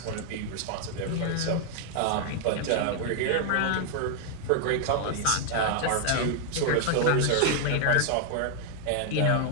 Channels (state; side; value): different; both; correlation 0.00